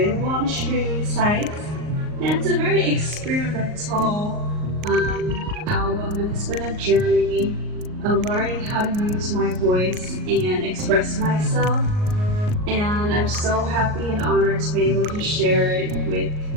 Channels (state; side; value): late; left; 38 ms